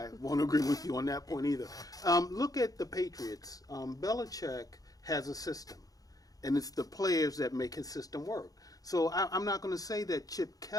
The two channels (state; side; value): late; right; 0.18 ms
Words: won't agree with you on that point either. Look at the Patriots. Belichick has a system, and it's the players that make his system work. So I'm not going to say that Chip